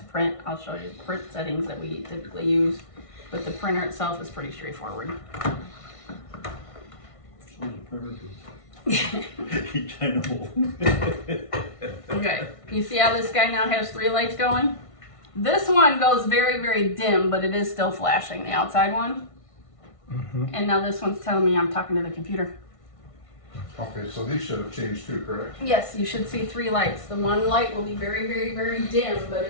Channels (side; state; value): right; late; 1.5 ms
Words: print. I'll show you the print settings that we typically use. But the printer itself is pretty straightforward. So the printer too. I know. Okay, you see how this guy now has 3 lights going? This one goes very, very dim, but it is still flashing, the outside one. And now this one's telling me I'm talking to the computer. Okay, so these should have changed too, correct? Yes, you should see 3 lights. The one light will be very, very, very dim, but